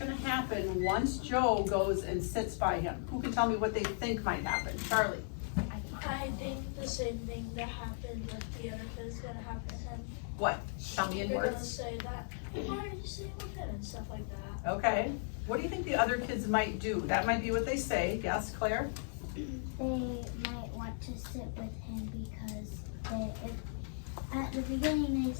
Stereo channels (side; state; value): right; silent; digital silence